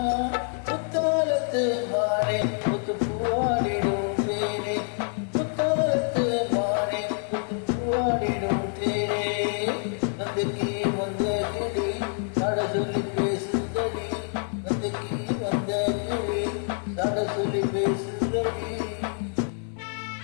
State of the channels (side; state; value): right; silent; 56 dB below the other